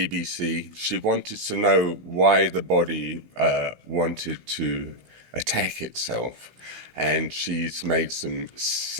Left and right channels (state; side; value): late; left; 16 ms